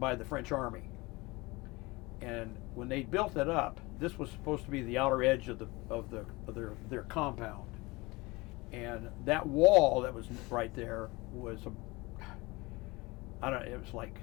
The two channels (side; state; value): right; quieter; 23.2 dB